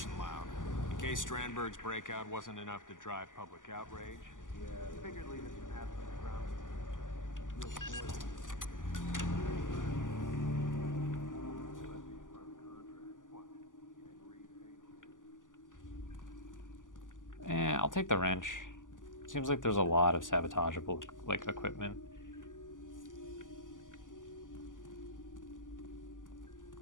and loud. In case Strandberg's breakout wasn't enough to drive public outrage. Yeah, I figured leaving some absence around. I'll take the wrench. Seems like there's a lot of sabotageable, like, equipment.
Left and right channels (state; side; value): late; right; 0.88 ms